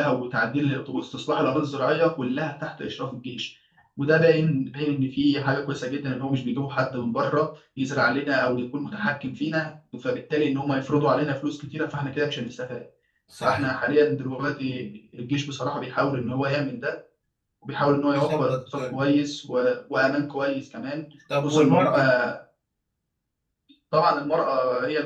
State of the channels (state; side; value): identical; both; correlation 1.00